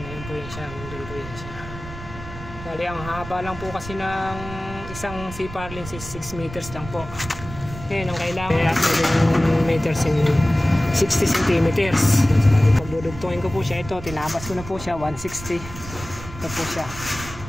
Ayun po yun siya. Ayun po yun siya. Bali ang haba lang po kasi ng isang C-par lens is 6 meters lang po. Ngayon ang kailangan 7 meters in 60 centimeters. Bali pag dudugtongin ko po siya, ito tinabas ko na po siya 160. Ito po siya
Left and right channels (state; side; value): noise; right; rumble, 12 dB below the sound